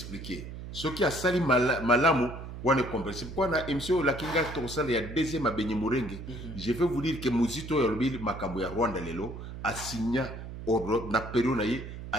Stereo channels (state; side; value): noise; right; hum, 10 dB below the sound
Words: Ceux qui a sali malamu, on est compris. Pourquoi na émission la kinga to sali ya deuxième à Benny Murenge. Je vais vous dire que Muzito Yolobi Makambo ya Rwanda lelo a signé na période